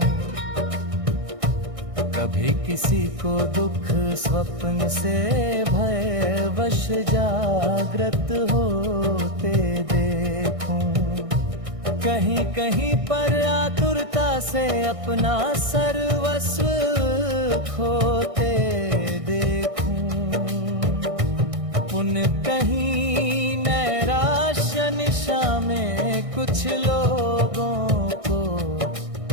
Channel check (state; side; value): late; left; 1.6 ms